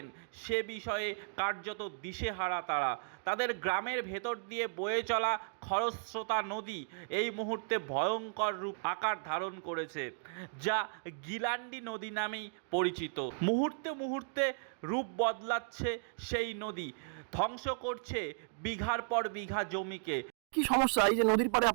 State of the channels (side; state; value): left; silent; digital silence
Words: সে বিষয়ে কার্যত দিশেহারা তারা। তাদের গ্রামের ভেতর দিয়ে বয়ে চলা খরস্রোতা নদী এই মুহূর্তে ভয়ঙ্কর রূপ আকার ধারণ করেছে, যা গিলান্ডি নদী নামেই পরিচিত। মুহূর্তে মুহূর্তে রূপ বদলাচ্ছে সেই নদী, ধ্বংস করছে বিঘার পর বিঘা জমিকে। কি সমস্যা এই যে নদীর পাড়ে